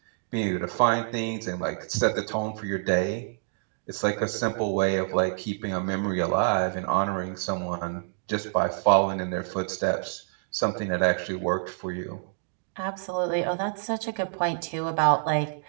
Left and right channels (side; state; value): left; silent; digital silence